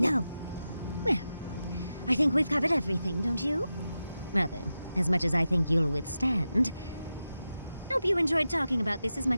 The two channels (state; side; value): inverted; both; correlation -0.91